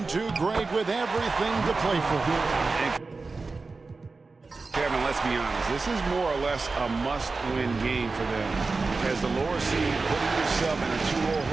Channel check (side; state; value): left; quieter; 3.9 dB